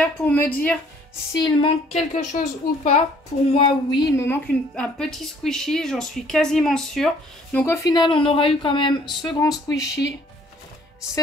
pour me dire s'il manque quelque chose ou pas. Pour moi, oui, il me manque un petit squishy. J'en suis quasiment sûre. Donc au final, on aura eu quand même ce grand squishy.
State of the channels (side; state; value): both; normal; correlation 0.59